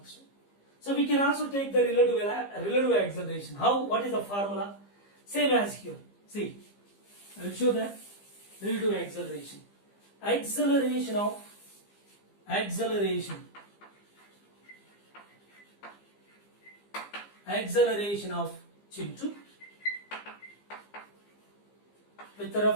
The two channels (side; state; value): right; late; 15 ms